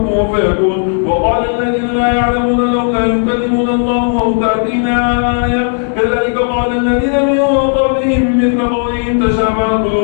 فيكون. وقال الذين لا يعلمون لولا يكلمون الله أو تأتينا آية كذلك قال الذين من قبلهم مثل قولهم تشابهت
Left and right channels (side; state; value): right; silent; digital silence